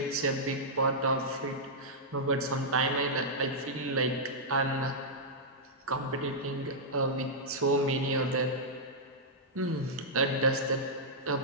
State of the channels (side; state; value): both; normal; correlation -0.10